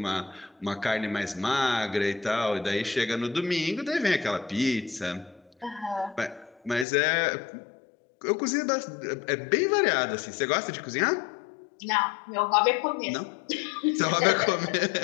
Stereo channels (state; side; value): drops out; right; at 6.9 s